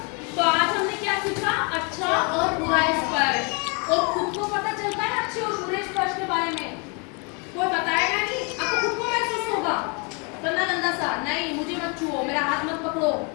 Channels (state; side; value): quieter; right; 33.6 dB